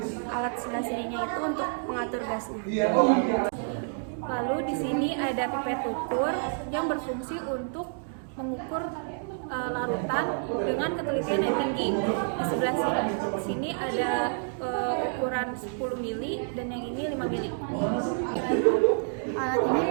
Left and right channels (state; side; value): silent; left; 59 dB below the other